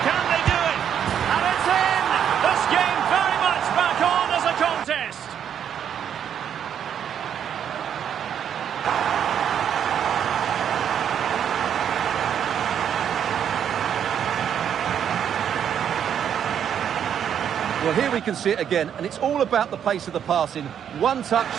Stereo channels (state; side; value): quieter; left; 8.8 dB